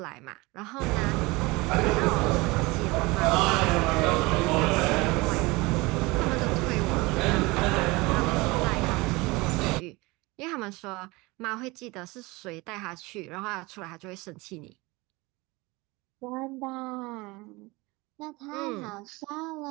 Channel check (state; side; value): quieter; left; 23.4 dB